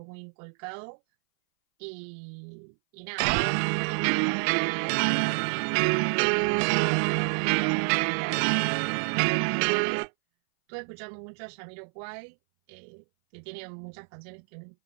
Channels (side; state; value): left; silent; 59 dB below the other